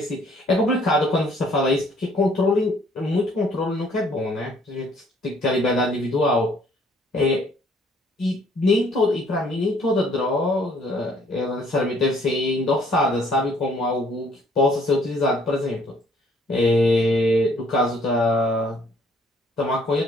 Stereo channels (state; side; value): normal; both; correlation 0.61